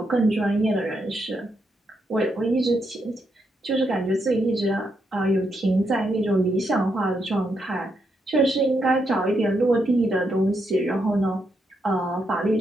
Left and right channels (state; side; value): normal; both; correlation 0.80